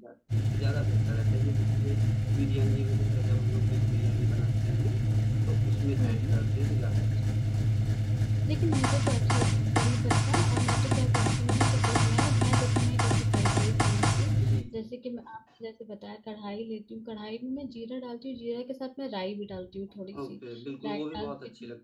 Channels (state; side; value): identical; both; correlation 1.00